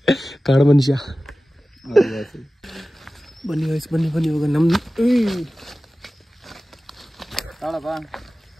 ಕಾಡು ಮನುಷ್ಯ. ಬನ್ನಿ ಗಾಯ್ಸ್, ಬನ್ನಿ ಇವಾಗ ನಮ್ಮ ತಾಳಪ್ಪ.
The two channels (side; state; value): both; normal; correlation 0.96